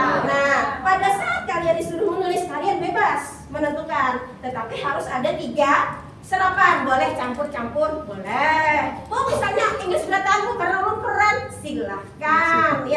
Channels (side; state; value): both; identical; correlation 1.00